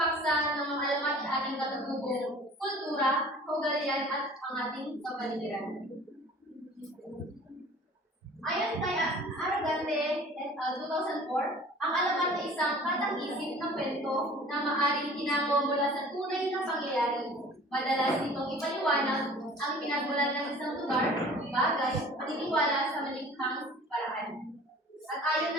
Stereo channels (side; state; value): both; normal; correlation 0.46